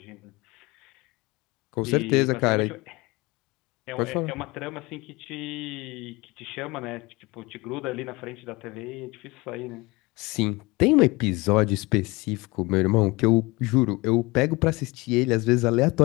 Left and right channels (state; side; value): quieter; right; 23.8 dB